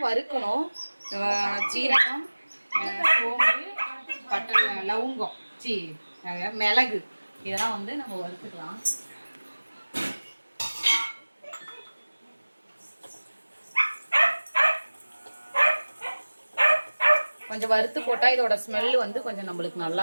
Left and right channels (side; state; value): both; inverted; correlation -1.00